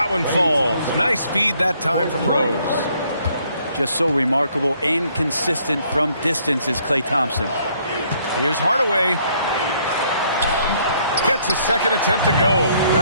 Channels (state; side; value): inverted; both; correlation -0.66